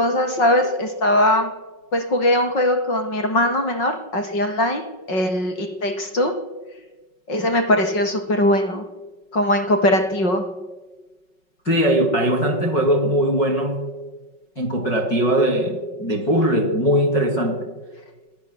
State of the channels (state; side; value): late; right; 5.4 ms